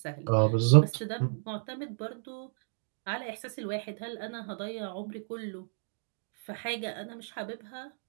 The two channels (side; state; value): left; silent; digital silence